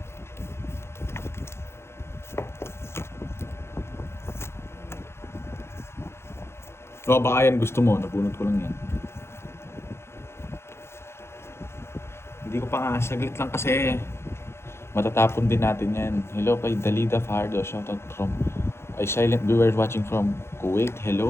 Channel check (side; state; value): right; late; 0.12 ms